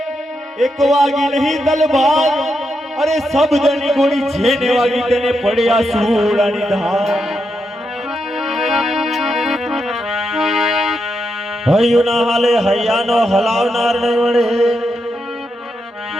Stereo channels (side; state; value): both; normal; correlation 0.84